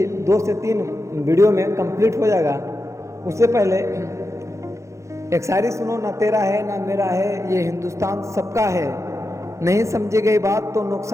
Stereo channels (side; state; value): left; late; 0.14 ms